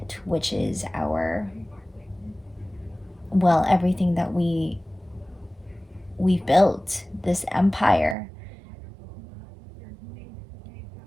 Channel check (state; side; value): drops out; left; at 8.2 s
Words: which is everything that we've built, this empire.